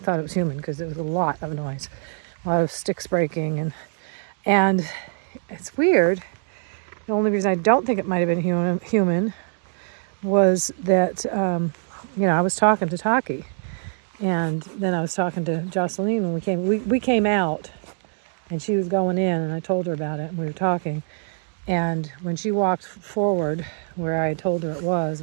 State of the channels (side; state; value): left; silent; 63 dB below the other